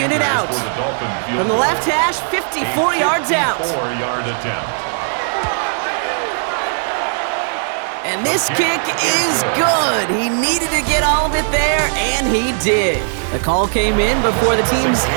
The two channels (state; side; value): silent; left; 65 dB below the other